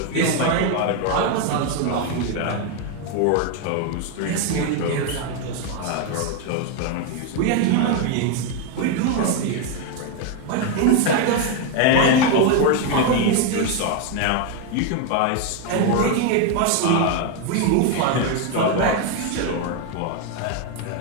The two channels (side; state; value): both; different; correlation 0.01